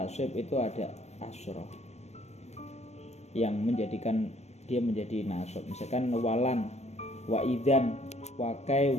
itu ada asroh yang menjadikan dia menjadi nasab. Misalkan walan, wa idzan, wakai,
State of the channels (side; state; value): right; late; 0.32 ms